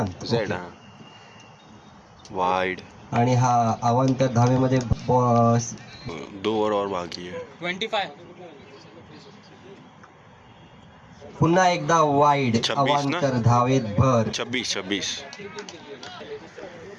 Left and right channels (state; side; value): identical; both; correlation 1.00